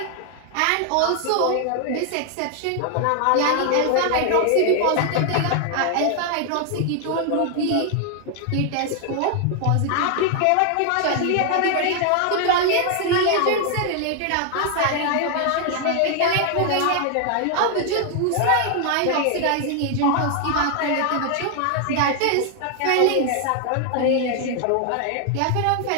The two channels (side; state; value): both; different; correlation 0.00